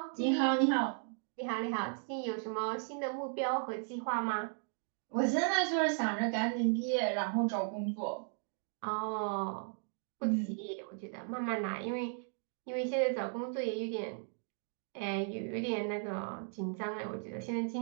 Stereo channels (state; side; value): silent; left; 54 dB below the other